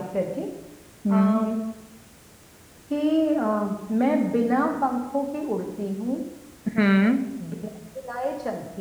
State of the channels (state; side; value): identical; both; correlation 1.00